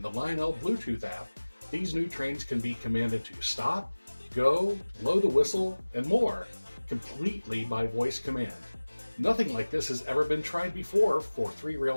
the Lionel Bluetooth app, these new trains can be commanded to stop, go, blow the whistle, and more, completely by voice command. Nothing like this has ever been tried before for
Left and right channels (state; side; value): inverted; both; correlation -1.00